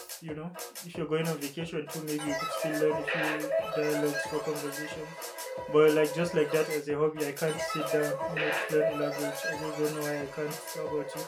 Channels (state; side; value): identical; both; correlation 1.00